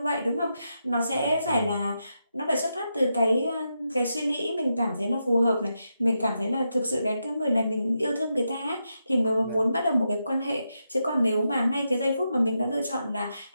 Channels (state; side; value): inverted; both; correlation -0.85